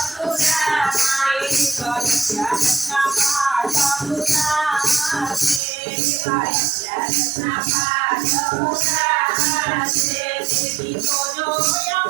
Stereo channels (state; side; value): drops out; left; at 5.6 s